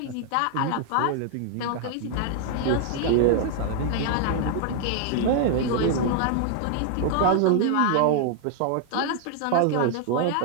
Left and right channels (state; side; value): different; both; correlation 0.00